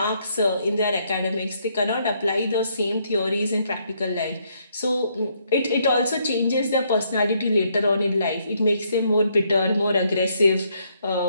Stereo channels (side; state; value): both; inverted; correlation -0.72